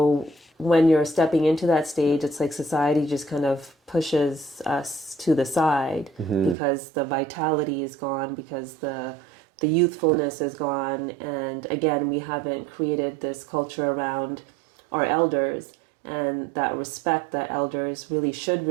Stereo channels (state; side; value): drops out; left; at 6.6 s